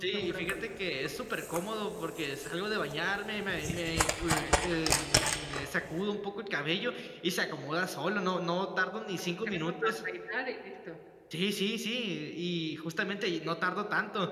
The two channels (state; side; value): identical; both; correlation 1.00